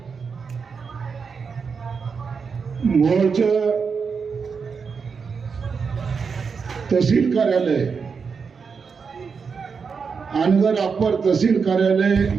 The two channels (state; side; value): quieter; left; 5.6 dB